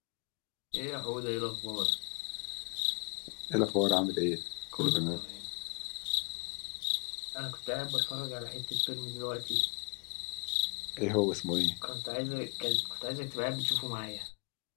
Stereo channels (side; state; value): right; quieter; 33.7 dB